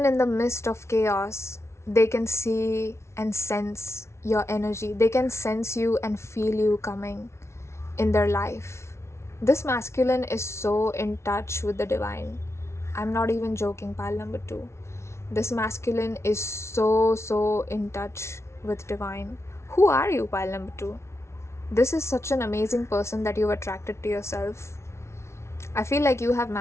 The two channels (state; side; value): late; right; 0.13 ms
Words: they can see and sense your energy. They can sense you and feel you coming in their life. This masculine is so in touch with the divine. I'm not even joking, pile number 2. This masculine is so in touch with divine. Who are you, pile number 2? This is such an amazing person that you've attracted to yourself. I feel like you have